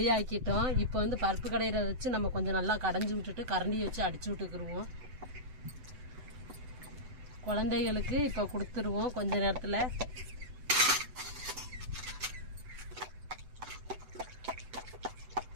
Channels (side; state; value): left; late; 7.9 ms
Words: ஆக்கிட்டோம். இப்போ வந்து பருப்பு கடையிற வச்சு நம்ம கொஞ்சம் நல்லா கடைஞ்சி விட்டுட்டு கரண்டியை வச்சு அடிச்சு விட்டுக்குருவோம். குழந்தைகளுக்கு இப்போ கொடுத்துருவோம் கொஞ்ச நேரத்தில்.